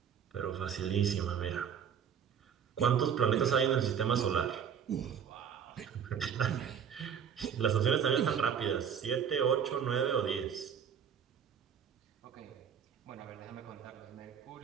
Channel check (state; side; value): quieter; left; 7.9 dB